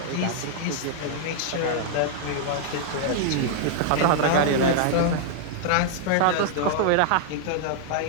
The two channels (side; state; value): both; different; correlation -0.01